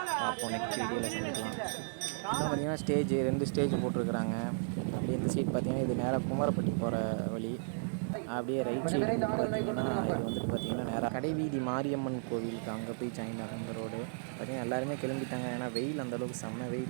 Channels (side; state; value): left; silent; digital silence